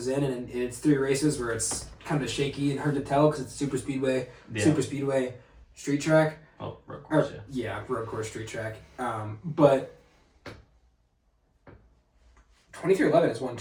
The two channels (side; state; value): both; identical; correlation 1.00